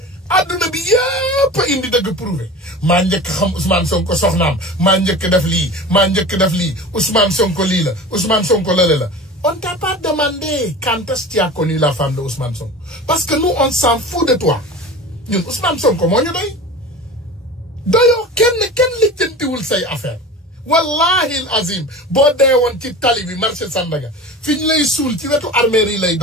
adduna bi yëpp indi dëgg prouvé maa njëkk xam Ousmane Sonko soxnaam maa njëkk def lii Ousmane Sonko lii la Ousmane Sonko lële la on t'a pas demandé quand est-ce que tu as connu la femme de Ousmane Sonko parce que nous on s'en fout de toi ñun Ousmane Sonko moo ñu doyoo kenn lijjantiwul say affaire wallahi al azim boo dee woon ci tali bi marché Sandaga fi ñu lay suul ci wetu armée yi lay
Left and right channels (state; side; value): normal; both; correlation 0.34